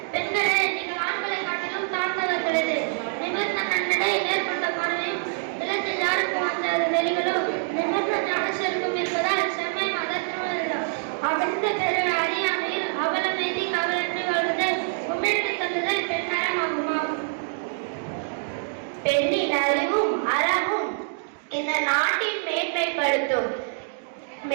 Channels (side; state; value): left; silent; digital silence